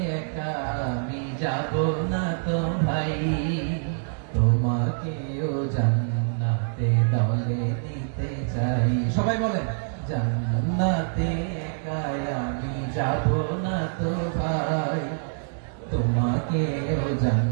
একা আমি যাব না তো ভাই, তোমাকেও জান্নাতে দলে নিতে চাই। সবাই বলেন, জান্নাতে একা আমি যাব না তো ভাই, তোমাকেও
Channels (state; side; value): silent; left; digital silence